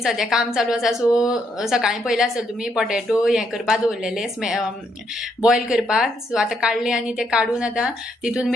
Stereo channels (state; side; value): normal; both; correlation 0.75